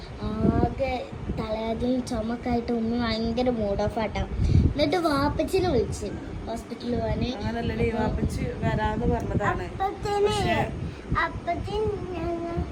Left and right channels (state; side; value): identical; both; correlation 1.00